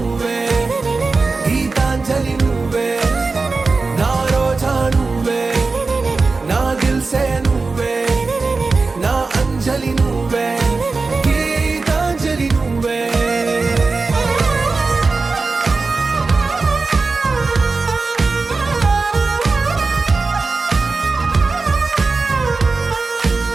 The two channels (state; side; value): quieter; left; 4.0 dB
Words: గీతాంజలి నువ్వే నా రోజా నువ్వే నా దిల్ సే నువ్వే నా అంజలి నువ్వే గీతాంజలి నువ్వే